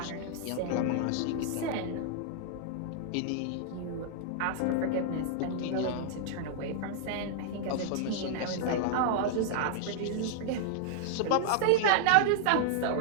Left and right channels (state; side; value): different; both; correlation -0.01